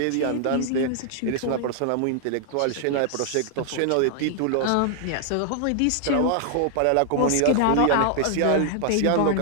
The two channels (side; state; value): both; different; correlation -0.01